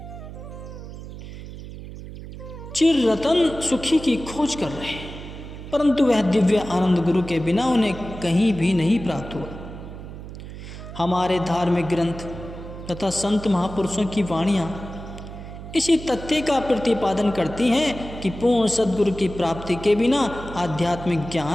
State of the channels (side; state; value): right; noise; hum, 12 dB below the sound